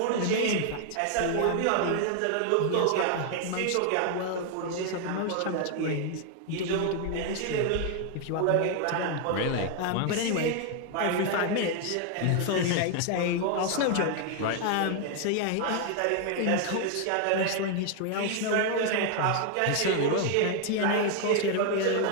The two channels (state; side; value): different; both; correlation 0.00